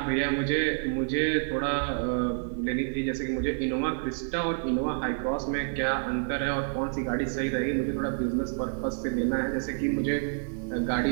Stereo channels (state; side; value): silent; left; 59 dB below the other